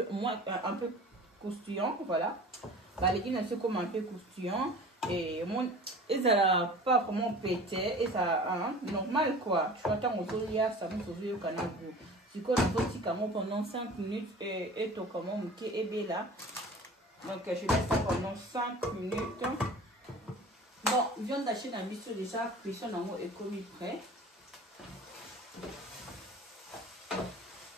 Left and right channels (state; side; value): normal; both; correlation 0.41